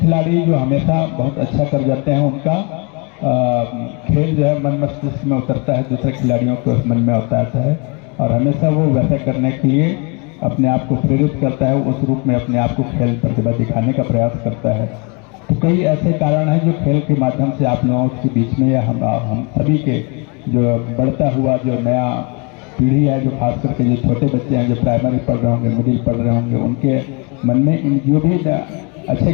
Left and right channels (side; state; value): right; quieter; 32.2 dB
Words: जो हमेशा बहुत अच्छा कर जाते हैं उनका खेल जो है मन मस्तिष्क में उतरता है, दूसरे खिलाड़ियों को मन में उतारता है और हमेशा वो वैसा करने के लिए अपने आप को प्रेरित करता है, उस रूप में अपने आप को खेल प्रतिभा दिखाने का प्रयास करता है। तो कई ऐसे कारण हैं जो खेल के माध्यम से आप लोगों के बीच में या हम सभी के जो बढ़ता हुआ जो नया पीढ़ी है, जो खास करके जो छोटे बच्चे हैं जो प्राइमरी पढ़ रहे होंगे, मिडिल पढ़ रहे होंगे, उनके मन में इन जो भी अच्छे